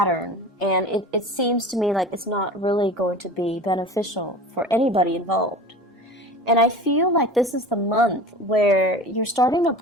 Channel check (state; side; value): normal; both; correlation 0.36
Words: and it seems to me like it's not really going to be beneficial for anybody involved. And I feel like this is the month where you're starting to